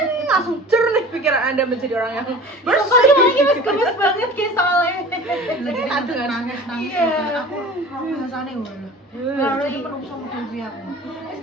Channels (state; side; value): normal; both; correlation 0.40